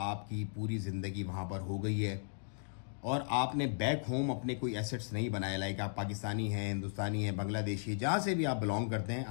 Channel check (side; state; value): right; silent; digital silence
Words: पूरी ज़िंदगी वहाँ पर हो गई है और आपने बैक होम अपने कोई एसेट्स नहीं बनाए, लाइक आप पाकिस्तानी हैं, हिंदुस्तानी हैं, बांग्लादेशी, जहाँ से भी आप बिलोंग करते हैं,